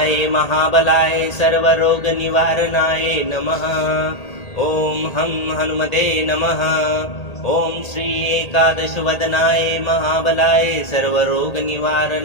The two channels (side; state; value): right; late; 1.8 ms